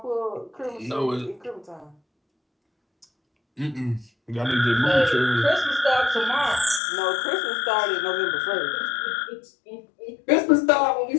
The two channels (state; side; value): drops out; right; at 6.8 s